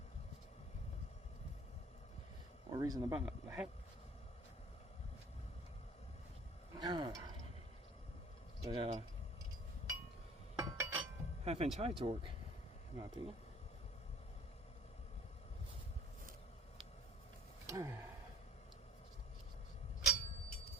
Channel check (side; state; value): both; normal; correlation 0.53